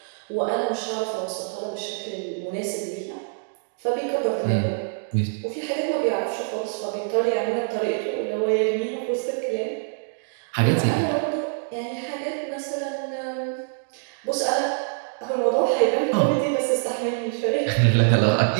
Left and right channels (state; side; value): silent; left; digital silence